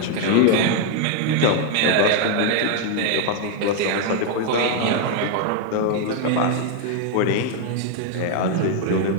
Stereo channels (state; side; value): different; both; correlation 0.00